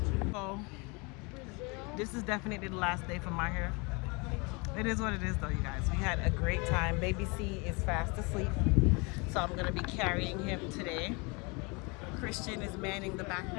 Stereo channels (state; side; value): quieter; right; 29.5 dB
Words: So this is definitely the last day for my hair. It is what it is though, you guys. We had a great time. Baby C is fast asleep, so I'm going to be carrying him today. Christian is manning the